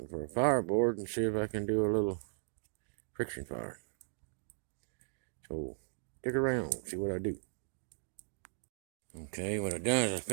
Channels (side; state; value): left; silent; digital silence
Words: for a fireboard and see if I can do a little friction fire. So, stick around, see what I do. Okay, what I done is I